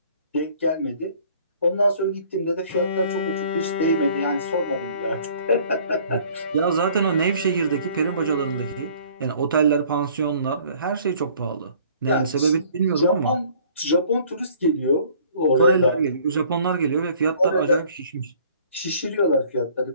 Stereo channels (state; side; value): inverted; both; correlation -0.55